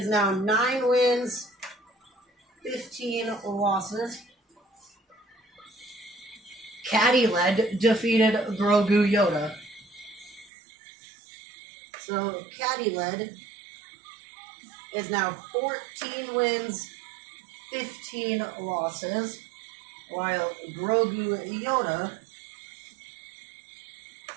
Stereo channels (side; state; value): left; drops out; at 10.5 s